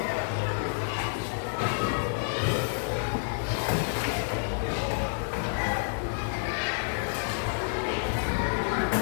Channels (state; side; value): silent; right; digital silence